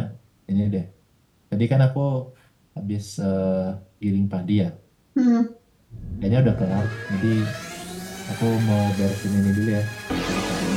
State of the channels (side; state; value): both; identical; correlation 1.00